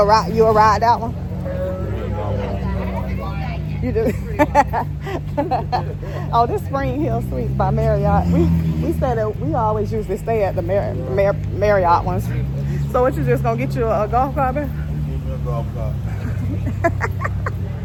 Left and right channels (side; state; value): both; identical; correlation 1.00